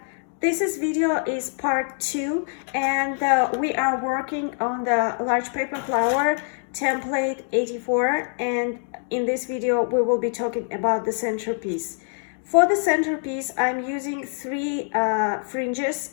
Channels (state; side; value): silent; right; 59 dB below the other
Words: This video is part 2 and we are working on the large paper flower template 84, and in this video we will be talking about the centerpiece. For the centerpiece I'm using 3 fringes,